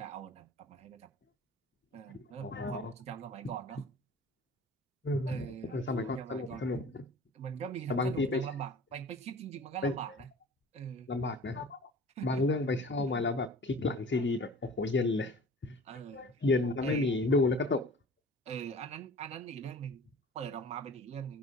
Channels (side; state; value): both; normal; correlation 0.44